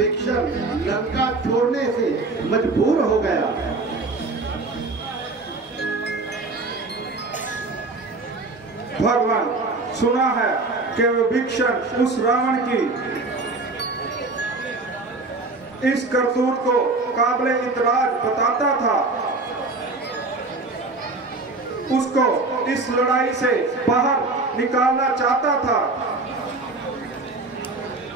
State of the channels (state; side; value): quieter; left; 3.4 dB